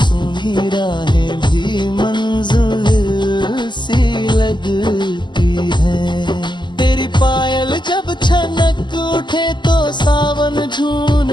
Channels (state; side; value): late; right; 0.22 ms